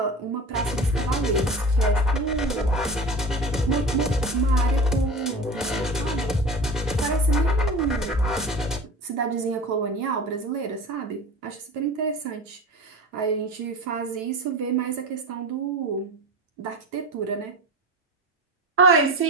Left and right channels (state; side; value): normal; both; correlation 0.33